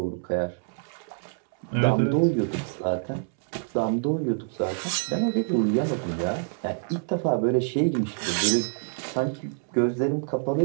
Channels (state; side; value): silent; left; 61 dB below the other